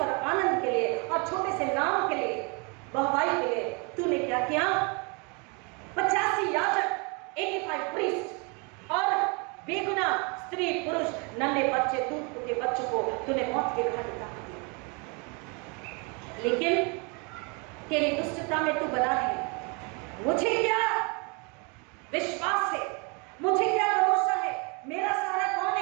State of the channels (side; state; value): left; quieter; 32.3 dB